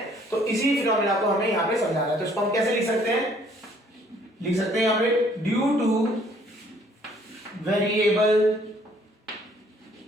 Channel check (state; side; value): normal; both; correlation 0.61